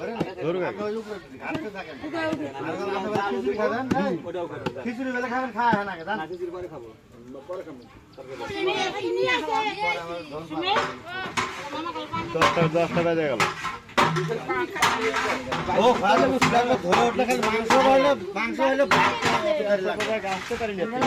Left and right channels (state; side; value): identical; both; correlation 1.00